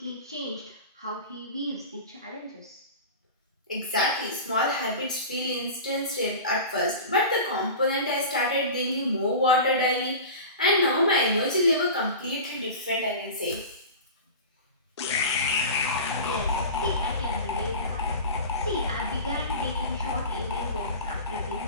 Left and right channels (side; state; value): both; inverted; correlation -0.33